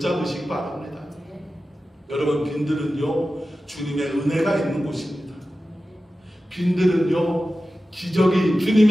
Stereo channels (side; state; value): both; normal; correlation 0.94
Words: 바랍니다. 여러분, 빈들은요, 주님의 은혜가 있는 곳입니다. 빈들은요,